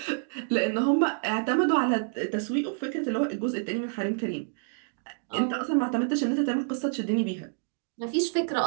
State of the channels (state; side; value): silent; left; digital silence